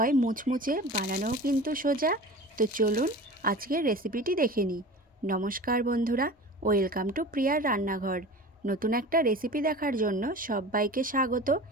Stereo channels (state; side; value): normal; both; correlation 0.36